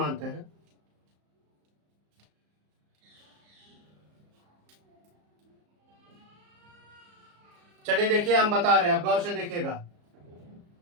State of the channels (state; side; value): late; left; 34 ms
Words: हैं। चलिए देखिए, हम बता रहे हैं, अब गौर से देखिएगा।